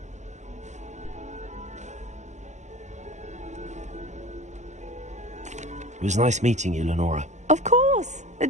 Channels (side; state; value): left; late; 0.34 ms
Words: It was nice meeting you, Lenora. Of course.